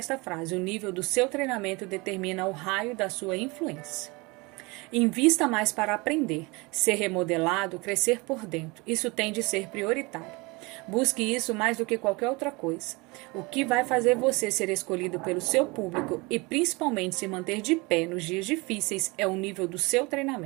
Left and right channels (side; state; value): left; quieter; 25.7 dB